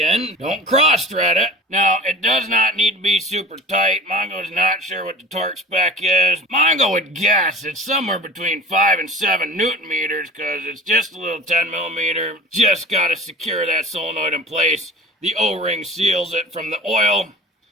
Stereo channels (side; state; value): both; normal; correlation 0.40